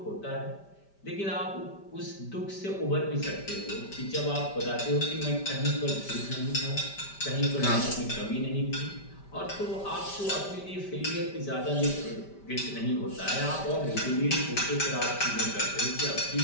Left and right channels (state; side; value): late; right; 5.1 ms